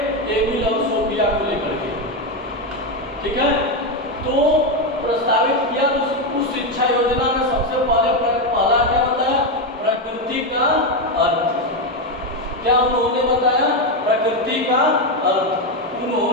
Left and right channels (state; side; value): normal; both; correlation 0.08